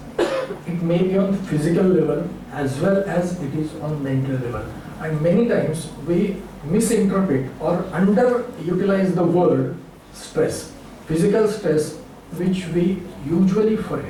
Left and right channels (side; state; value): both; identical; correlation 1.00